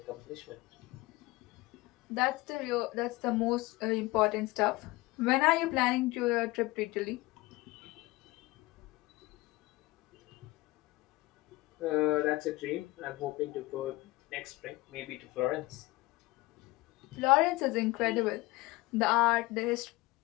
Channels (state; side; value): quieter; right; 20.9 dB